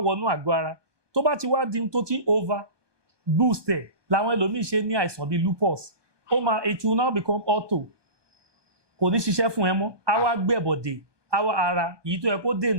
àgọ́ ara tó bá ti wá di tó ti over boost ẹ̀ làwọn ẹlòmíì ṣe ní àìsàn bíi lupus ó máa it will now become auto kò ní ṣiṣẹ́ fún ẹ mọ́ á wá gbẹ̀bọ̀dè àwa ara èyí tó yẹ kó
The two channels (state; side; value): late; left; 1.2 ms